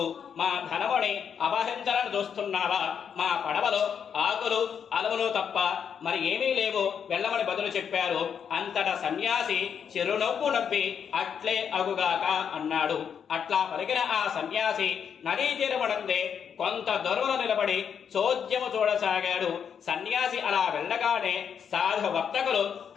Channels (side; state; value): right; quieter; 7.5 dB